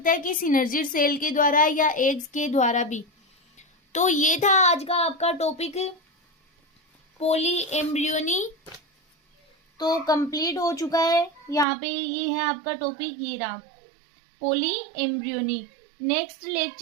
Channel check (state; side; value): drops out; left; at 11.7 s